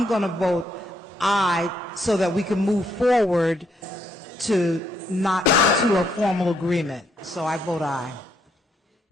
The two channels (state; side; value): normal; both; correlation 0.74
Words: going to vote aye so that we can move forward to not to a formal agreement. So I vote aye.